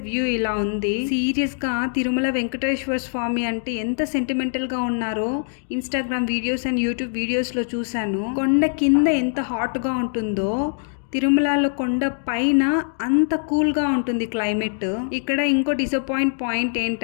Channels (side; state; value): right; silent; digital silence